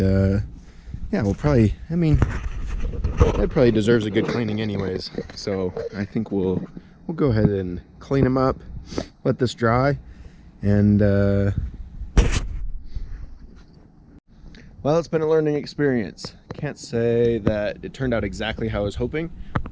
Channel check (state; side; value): identical; both; correlation 1.00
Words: yeah, we'll probably, I mean, that probably deserves a good cleaning anyways. So I think we'll go ahead and clean them up, let this dry, and well, it's been a learning experience. Can't say that it turned out exactly how I was hoping,